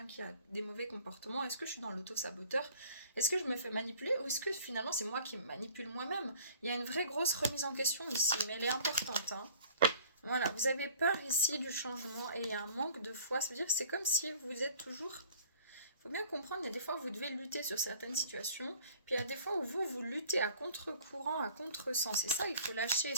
qui a des mauvais comportements? Est-ce que je suis dans l'auto-saboteur? Est-ce que je me fais manipuler? Ou est-ce que finalement c'est moi qui me manipule moi-même? Il y a une vraie grosse remise en question ici, mais elle est importante. Hein. Voilà, vous avez peur ici du changement et il y a un manque de foi. Ça veut dire que c'est comme si vous êtes toujours... Il faut bien comprendre, il y a des fois où vous devez lutter sur certaines situations, puis il y a des fois où vous luttez à contre-courant, à contre-sens. Et ça, il faut lâcher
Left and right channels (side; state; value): both; inverted; correlation -0.51